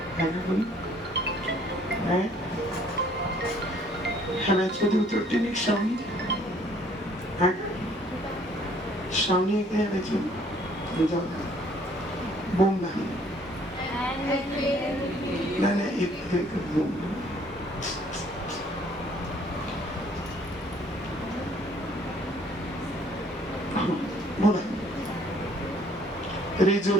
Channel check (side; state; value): both; normal; correlation 0.60